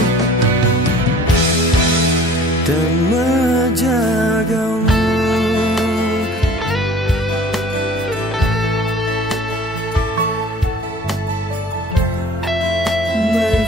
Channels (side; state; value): both; normal; correlation 0.48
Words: dan menjagamu. My